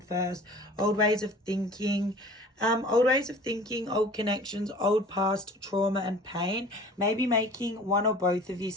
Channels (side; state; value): both; normal; correlation 0.45